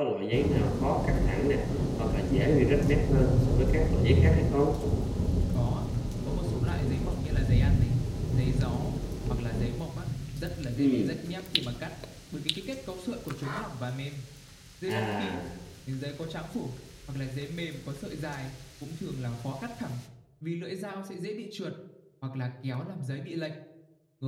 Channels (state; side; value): identical; both; correlation 1.00